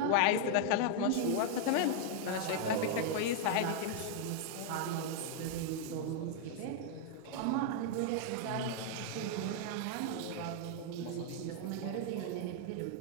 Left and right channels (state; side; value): different; both; correlation 0.00